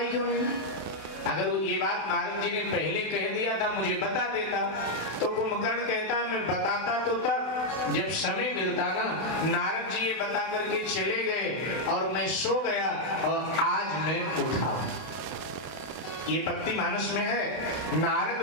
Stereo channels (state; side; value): late; right; 32 ms